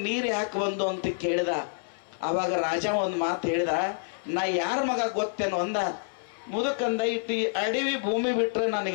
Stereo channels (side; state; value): right; silent; 59 dB below the other